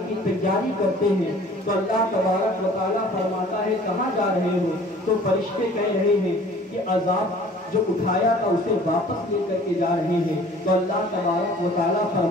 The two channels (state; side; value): normal; both; correlation 0.50